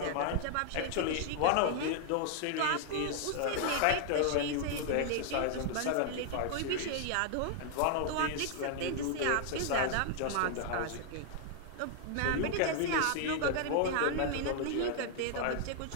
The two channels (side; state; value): both; different; correlation 0.00